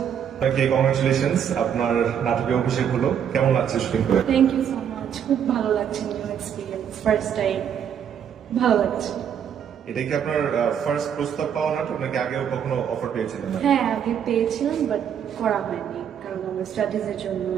আপনাকে কংগ্রেচুলেশনস, আপনার নাটকে অভিষেক হলো। কেমন লাগছে শুটিং করে? Thank you so much. খুব ভালো লাগছে, নিউ এক্সপিরিয়েন্স, ফার্স্ট টাইম। ভালো লাগছে। এটা কি আপনার ফার্স্ট প্রস্তাব পাওয়া নাটক নাকি আগেও কখনো অফার পেয়েছিলেন? হ্যাঁ, আগে পেয়েছিলাম বাট করা হয়নি, কারণ আমার স্টাডিজের জন্য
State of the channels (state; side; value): quieter; left; 8.5 dB